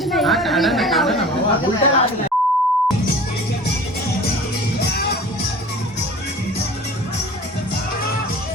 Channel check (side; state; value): both; normal; correlation 0.41